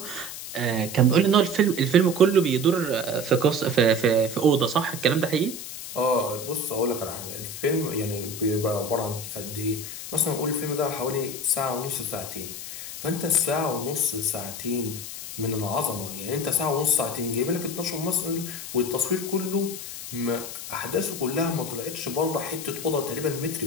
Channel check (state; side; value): noise; left; hiss, 9 dB below the sound